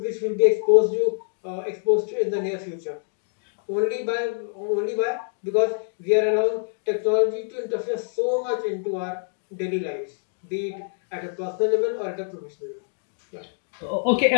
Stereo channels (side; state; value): right; silent; digital silence